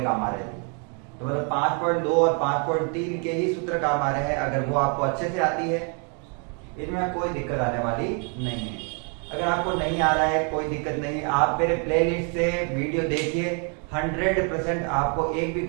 काम आ रहे हैं, तो मतलब 5.2 और 5.3 के ही सूत्र काम आ रहे हैं। अगर वो आपको अच्छे से आती है, इनमें कोई दिक्कत आने वाली नहीं है। अगर आपको नहीं आ रहा है कोई दिक्कत नहीं, आप मेरे प्लेलिस्ट से वीडियो देखिए, 100% आपको एक भी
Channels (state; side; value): quieter; left; 38.6 dB